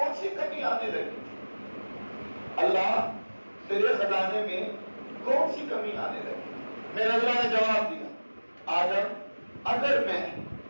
سی کمی آنے لگی؟ اللہ تیرے خزانے میں کون سی کمی آنے لگی؟ میرے اللہ نے جواب دیا، آدم اگر میں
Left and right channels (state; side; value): inverted; both; correlation -1.00